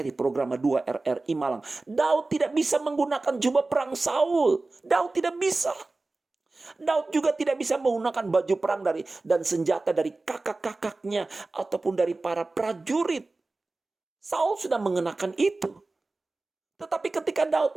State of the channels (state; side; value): quieter; left; 3.3 dB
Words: programa 2 RRI Malang, Daud tidak bisa menggunakan jubah perang Saul. Daud tidak bisa. Daud juga tidak bisa menggunakan baju perang dan senjata dari kakak-kakaknya ataupun dari para prajurit. Saul sudah mengenakan itu. Tetapi ketika Daud